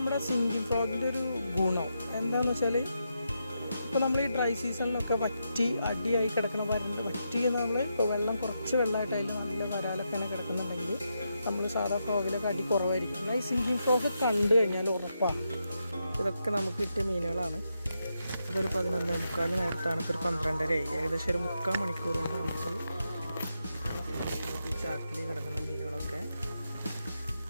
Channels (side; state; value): both; inverted; correlation -0.84